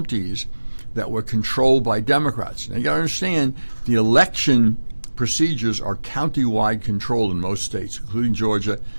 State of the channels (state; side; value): inverted; both; correlation -1.00